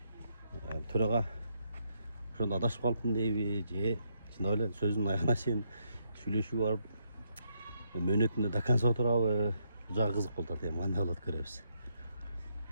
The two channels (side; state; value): both; inverted; correlation -0.75